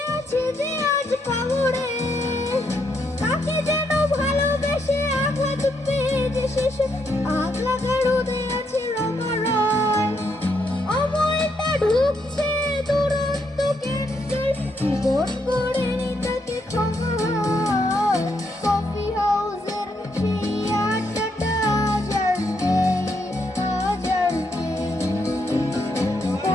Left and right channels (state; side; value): normal; both; correlation 0.77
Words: আছে যে আজ কবরে। তাকে যেন ভালোবেসে আগলা চুপে যে শেষে আগলা গাড়ুদে আছে রমা রয়। অমলটা ঢুকছে দুরন্ত কেন্দ্রের জীবন গড়ে তাকে ক্ষমা হয়। কফি হাউসের সেই আড্ডাটা আজ আর নেই, আজ আর নেই।